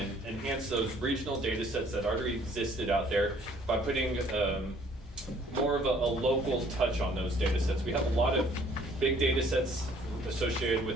enhance those regional data sets that already existed out there by putting more of a local touch on those data sets. We have a lot of big data sets associated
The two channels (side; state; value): both; normal; correlation 0.59